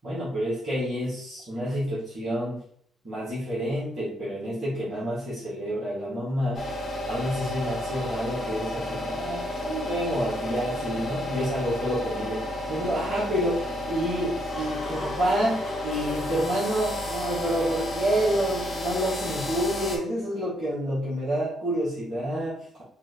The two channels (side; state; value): both; normal; correlation 0.73